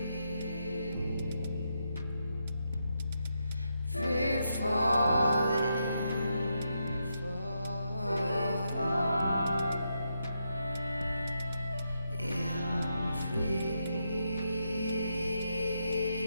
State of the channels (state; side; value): inverted; both; correlation -0.83